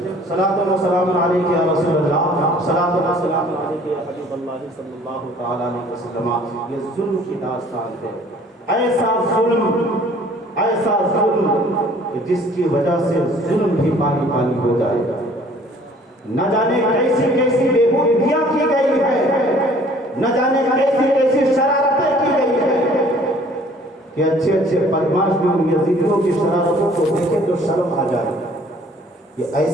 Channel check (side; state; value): both; normal; correlation 0.54